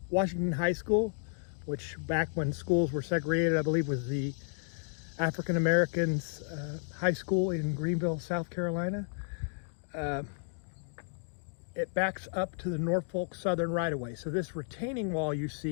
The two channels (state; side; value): silent; right; digital silence